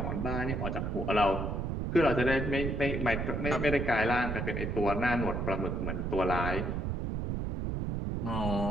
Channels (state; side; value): noise; right; rumble, 1 dB below the sound